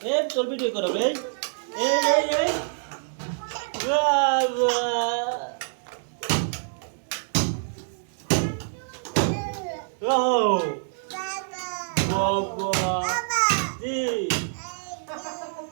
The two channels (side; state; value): left; silent; digital silence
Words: এই তোর ভিডিও করো রে। এই বাবা, ও বাবা